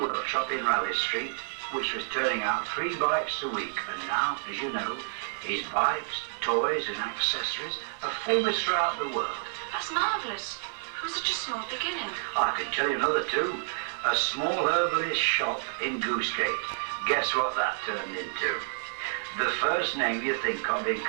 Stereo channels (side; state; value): left; silent; 58 dB below the other